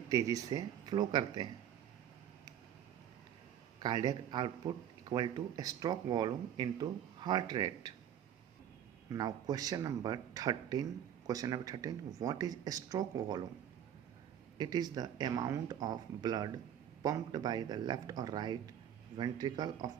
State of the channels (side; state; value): left; quieter; 10.0 dB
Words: तेजी से फ्लो करते हैं. Cardiac output equal two stroke volume into heart rate. Now question number 13. What is stroke volume? It is the amount of blood pumped by the left or right ventricle of